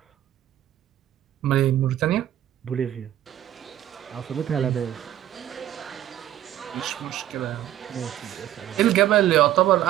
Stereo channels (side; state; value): left; quieter; 12.5 dB